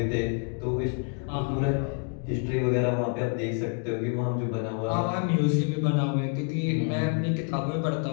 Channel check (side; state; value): right; quieter; 39.0 dB